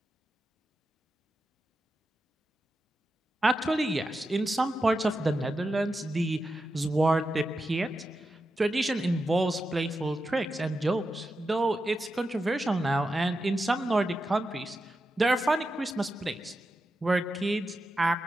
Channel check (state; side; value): normal; both; correlation 0.89